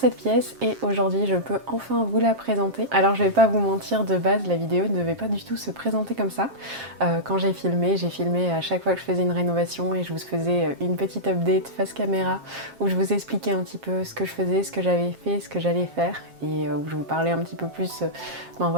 pièce, et aujourd'hui je peux enfin vous la présenter. Alors je vais pas vous mentir, de base la vidéo ne devait pas du tout se présenter comme ça. Quand j'ai filmé à chaque fois que je faisais une rénovation et je vous faisais une petite update face caméra où je vous expliquais un petit peu ce que je faisais, ce que j'avais fait, ce que j'allais faire, et où je vous parlais un petit peu plus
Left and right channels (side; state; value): left; late; 7.5 ms